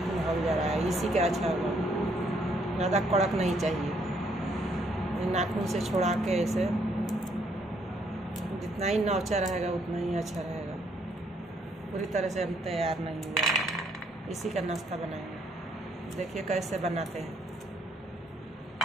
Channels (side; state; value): both; normal; correlation 0.69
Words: हल जा रहा है, इसी का अच्छा होगा। ज़्यादा कड़क नहीं चाहिए, नाखून से छुड़ा के इसे जितना ही नौचा रहेगा उतना ही अच्छा रहेगा। पूरी तरह से हम तैयार नहीं हुआ है, इसी का नाश्ता बनाएंगे। देखिए कैसे बनाते हैं।